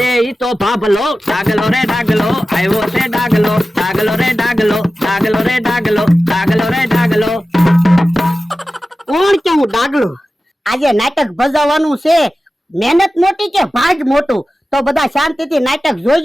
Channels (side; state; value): both; normal; correlation 0.94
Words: ઈ તો ભાભલો, ડાગલો રે ડાગલો આવ્યો છે ડાગલો, ડાગલો રે ડાગલો, ડાગલો રે ડાગલો, ડાગલો રે ડાગલો. કોણ કેવું ડાગલો? આજે નાટક ભજવવાનું છે, મહેનત મોટી કે ભાગ મોટું? તો બધા શાંતિથી નાટક